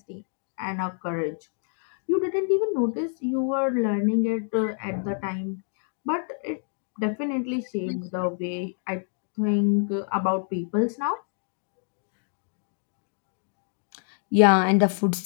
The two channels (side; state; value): right; silent; 60 dB below the other